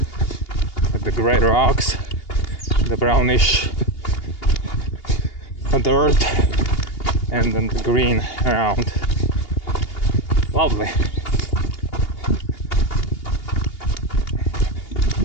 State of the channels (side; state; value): right; late; 2.8 ms